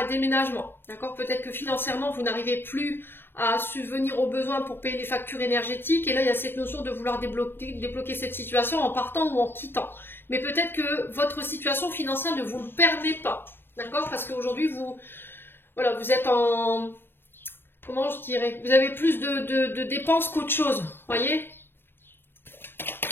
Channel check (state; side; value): late; right; 0.10 ms